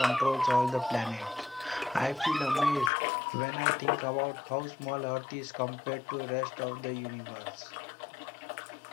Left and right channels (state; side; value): drops out; right; at 2.9 s